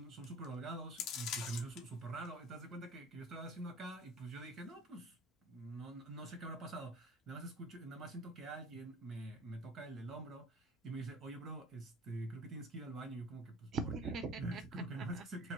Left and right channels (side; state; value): both; normal; correlation 0.46